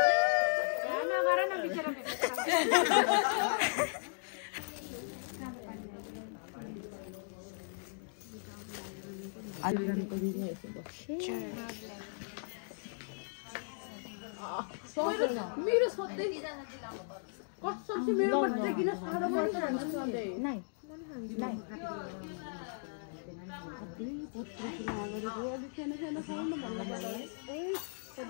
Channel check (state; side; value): silent; right; digital silence